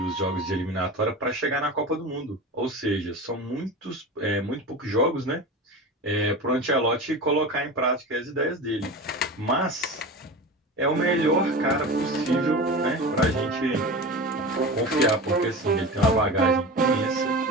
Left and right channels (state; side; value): normal; both; correlation 0.30